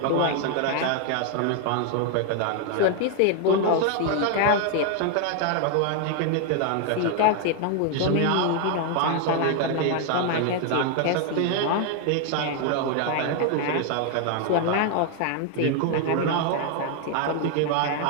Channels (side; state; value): both; different; correlation 0.00